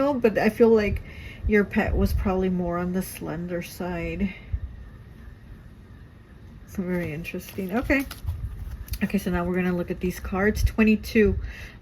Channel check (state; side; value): identical; both; correlation 1.00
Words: but I feel like your pet was probably more on the slender side. Very interesting. Okay. Okay, so now we're going to look at these cards. 22.